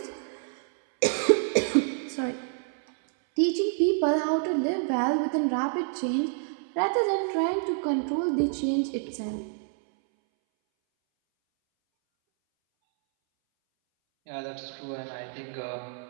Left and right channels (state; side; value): silent; left; 59 dB below the other